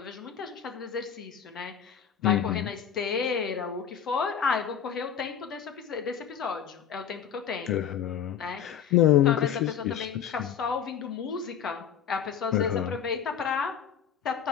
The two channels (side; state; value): right; quieter; 8.4 dB